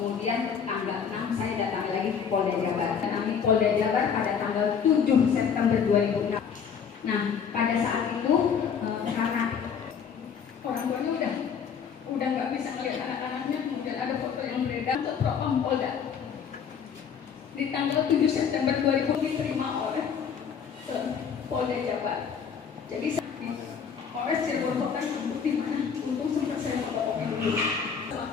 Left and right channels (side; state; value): right; quieter; 7.0 dB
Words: tanggal 6 saya datang lagi ke Polda Jabar. Kami Polda Jabar pada tanggal 7 September 2006. Nah, pada saat itu karena orang tuanya udah nggak bisa melihat anak-anaknya, kemudian ada foto yang beredar ke Propam Polda. Di tanggal 7 September 2000 diterima oleh Polda Jabar. Jadi Polres Cirebon Kota bukti mana? Untung sempat saya melaporkan dulu. Sama